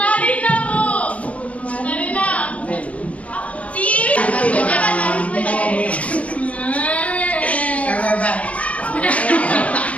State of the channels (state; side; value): late; right; 0.065 ms